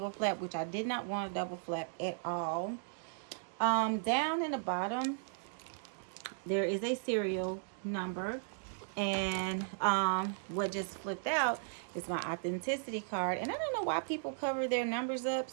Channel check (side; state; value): left; silent; digital silence